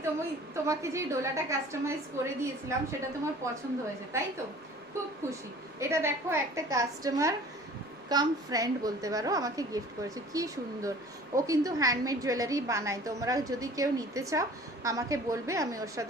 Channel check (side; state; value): both; normal; correlation 0.47